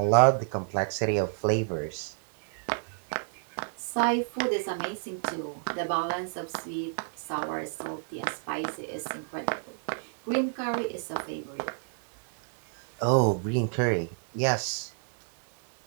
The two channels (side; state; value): left; silent; digital silence